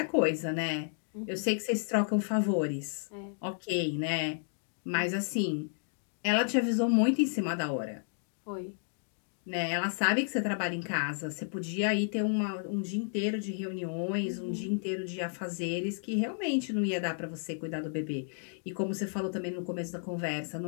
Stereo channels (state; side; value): silent; right; digital silence